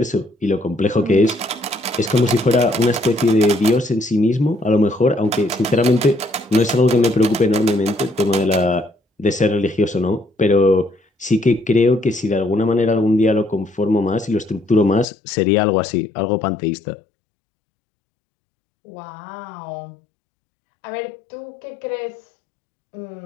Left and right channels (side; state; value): right; drops out; at 15.1 s